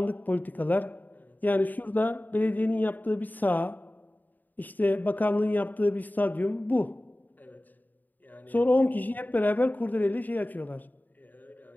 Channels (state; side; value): late; right; 0.086 ms